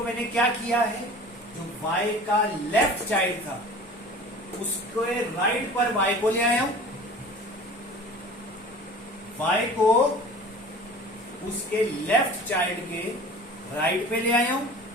मैंने क्या किया है, जो y का लेफ्ट चाइल्ड था उसके राइट पर y को ले आया हूं, y को उसके लेफ्ट चाइल्ड के राइट पे ले आया हूं,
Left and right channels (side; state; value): both; normal; correlation 0.41